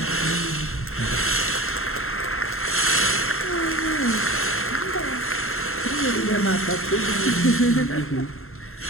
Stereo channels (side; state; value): right; late; 0.61 ms